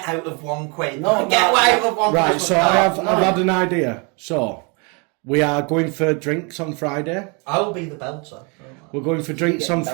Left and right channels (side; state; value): left; quieter; 32.6 dB